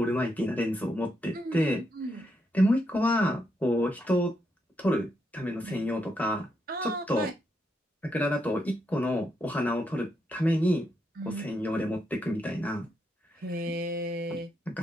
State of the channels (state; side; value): normal; both; correlation 0.80